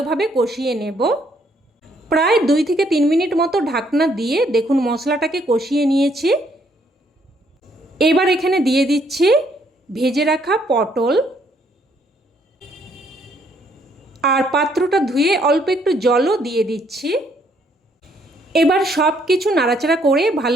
কষিয়ে নেব। প্রায় 2 থেকে 3 মিনিট মতো ঢাকনা দিয়ে দেখুন মশলাটাকে কষিয়ে নিয়েছি। এবার এখানে দিয়ে দিচ্ছি ভেজে রাখা পটল, আর পাত্রটা ধুয়ে অল্প একটু জলও দিয়ে দিচ্ছি। এবার সব কিছু নাড়াচাড়া করে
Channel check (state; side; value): normal; both; correlation 0.69